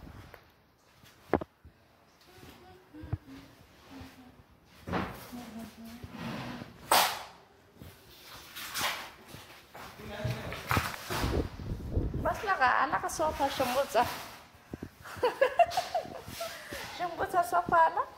बसला का? आला का सोफा शंभूचा? शंभूचा सोफा आला.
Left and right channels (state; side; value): identical; both; correlation 1.00